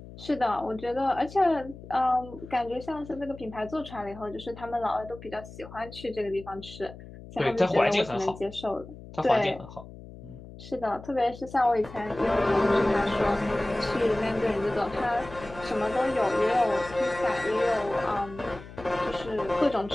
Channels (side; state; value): left; noise; hum, 16 dB below the sound